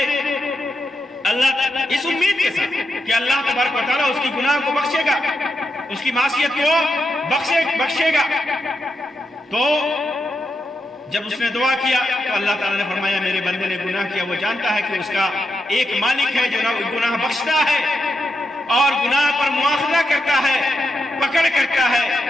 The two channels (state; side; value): normal; both; correlation 0.85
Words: اللہ اس امید کے ساتھ کہ اللہ تبارک و تعالیٰ اس کی گناہ کو بخشے گا، اس کی معصیت کو بخشے گا۔ تو جب اس نے دعا کیا تو اللہ تعالیٰ نے فرمایا میرے بندے نے گناہ کیا، وہ جانتا ہے کہ اس کا ایک مالک ہے جو گناہ بخشتا ہے اور گناہ پر مواخذہ کرتا ہے، پکڑ کرتا ہے۔